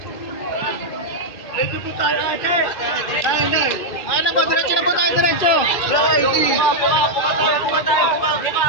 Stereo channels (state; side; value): late; right; 2.1 ms